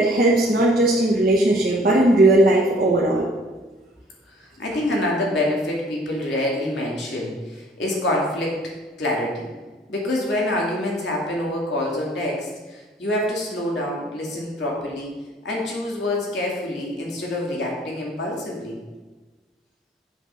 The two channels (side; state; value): both; normal; correlation 0.56